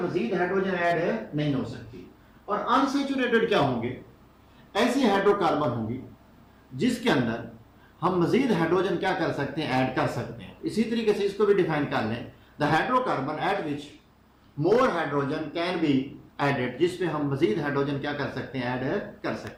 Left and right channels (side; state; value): both; identical; correlation 1.00